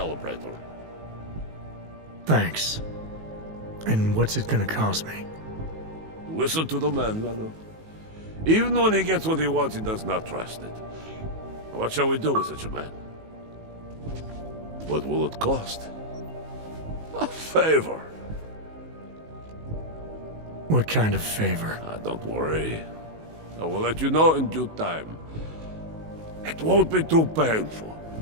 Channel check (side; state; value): left; late; 19 ms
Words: Thanks. And what's it gonna cost me? Listen to the man, Vano. Even when he gets what he wants, he does not trust it. What shall we do with such a man? What will it cost? A favor. What kind of favor? Don't worry. I will let you know in due time. It won't be too painful.